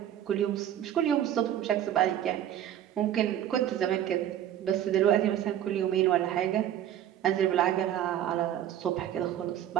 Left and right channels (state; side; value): quieter; left; 11.2 dB